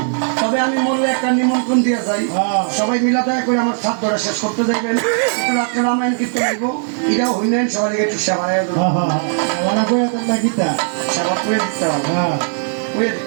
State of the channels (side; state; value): left; silent; 68 dB below the other